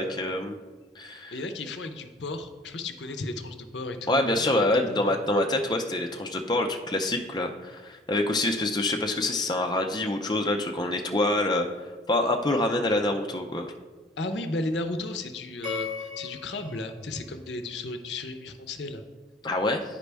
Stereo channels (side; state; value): both; normal; correlation 0.49